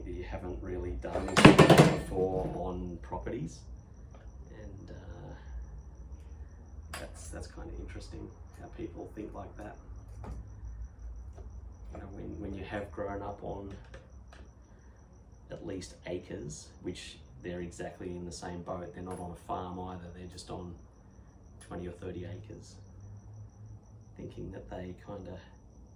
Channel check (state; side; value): identical; both; correlation 1.00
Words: that you haven't really done this before on properties, and that's kind of interesting how people think like that. You know, when you have grown up on at least acres, which they're exactly in the same boat. They're not on a farm either, they're just on 20 or 30 acres, thinking that they kind of